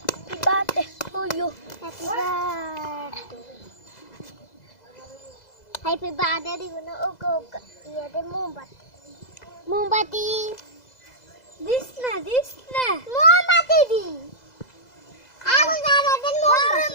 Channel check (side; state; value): right; late; 2.0 ms